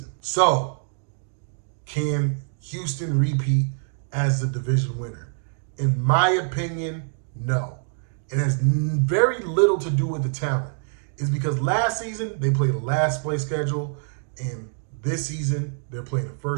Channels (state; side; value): silent; left; digital silence